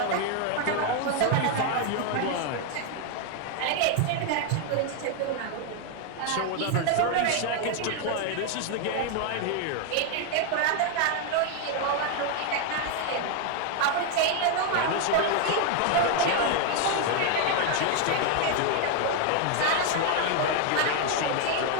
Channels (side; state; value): both; different; correlation 0.01